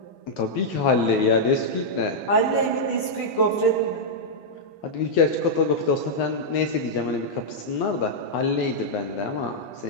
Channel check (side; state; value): right; late; 11 ms